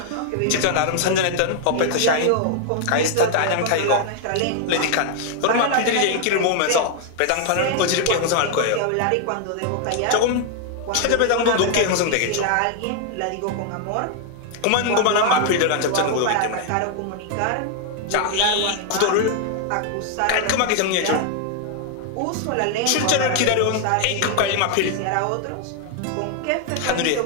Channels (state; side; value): different; both; correlation 0.00